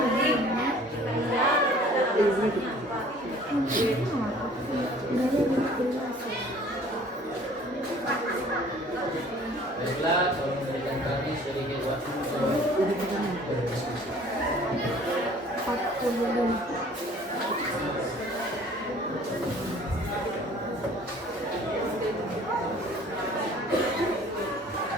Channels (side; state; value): both; normal; correlation 0.51